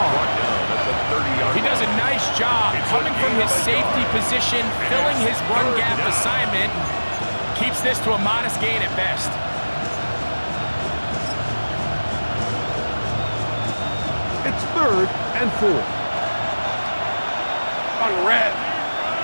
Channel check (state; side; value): inverted; both; correlation -1.00